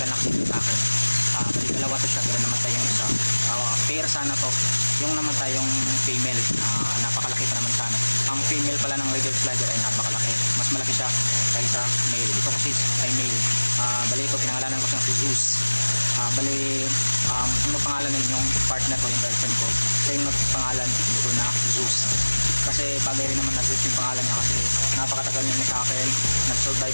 na kasi dito sa akin. Bali dalawa to siya, pero namatay yung isa. Pair sana to. Yung namatay yung female, napakalaki pa naman sana. Ang female pala ng river slider ay napakalaki. Mas malaki siya kaysa male. Ito kasi ay male. Bali ito, pinangalanan ko siyang si Zeus. Bali ano pangalan nun yung partner ko, yung girlfriend ko, siya yung nagpangalan dito na Zeus. Kasi bagay rin naman na Zeus yung pangalan niya, kasi napakatagal niya sa akin.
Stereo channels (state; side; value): inverted; both; correlation -1.00